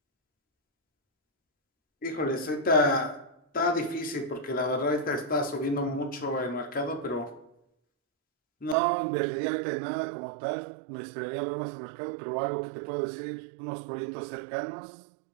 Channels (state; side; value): drops out; left; at 8.8 s